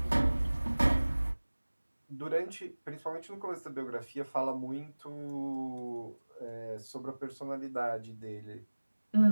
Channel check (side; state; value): both; inverted; correlation -1.00